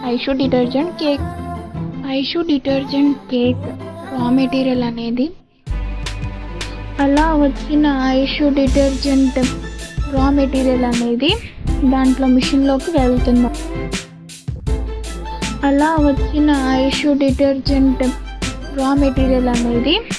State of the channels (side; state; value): both; identical; correlation 1.00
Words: Aishu detergent cake. Aishu detergent cake raw material అనేది అలా వచ్చిన ఐషు డిటర్జెంట్ రా మెటీరియల్ అనేది దాంట్లో మిషన్లోకి వెళ్తుంది. అలా వచ్చిన ఐషు డిటర్జెంట్ రా మెటీరియల్ అనేది